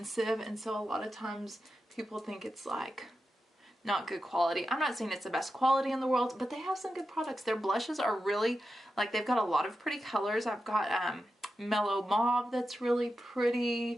and so a lot of times people think it's like not good quality. I'm not saying it's the best quality in the world, but they have some good products. Their blushes are really, like, they've got a lot of pretty colors. I've got mellow mauve that's really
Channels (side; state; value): both; normal; correlation 0.90